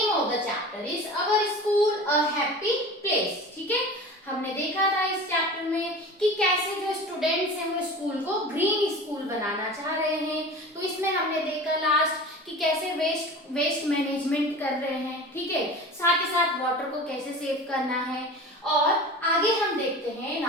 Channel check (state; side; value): normal; both; correlation 0.36